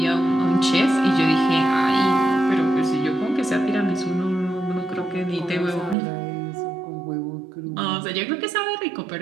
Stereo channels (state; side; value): drops out; left; at 6.0 s